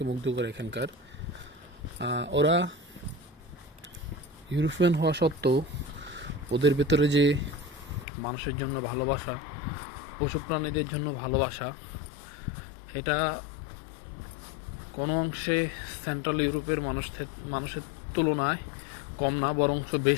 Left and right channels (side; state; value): right; drops out; at 8.1 s